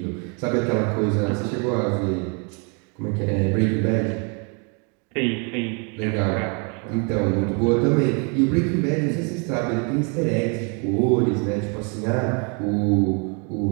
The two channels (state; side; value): quieter; left; 35.4 dB